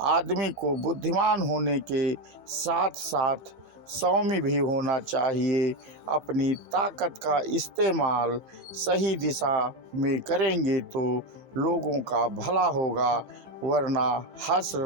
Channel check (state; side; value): late; left; 15 ms